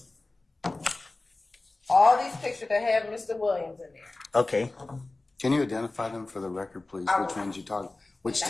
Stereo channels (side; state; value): right; quieter; 3.1 dB